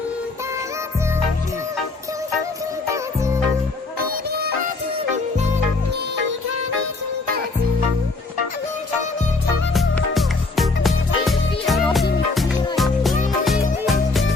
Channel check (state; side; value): quieter; right; 3.6 dB